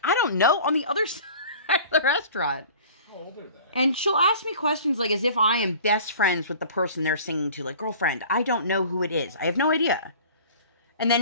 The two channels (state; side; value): inverted; both; correlation -0.45